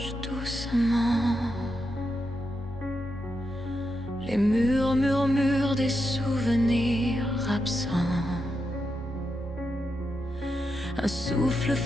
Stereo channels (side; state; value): both; normal; correlation 0.85